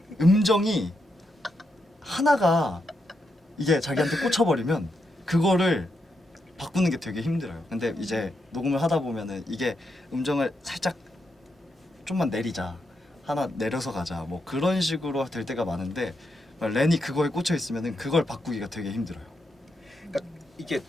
음정이 하나가 이게 자기한테 꽂혀버리면 그거를 바꾸는 게 되게 힘들어요. 근데 이제 녹음을 하다 보면은 이게 음정을 살짝 좀만 내리자, 하나 내려서 가자, 뭐 그런 식으로 될 때가 많은데 렌이 그거에 꽂혀 있으면은 그걸 바꾸기가 되게 힘들어요. 이게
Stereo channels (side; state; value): both; normal; correlation 0.83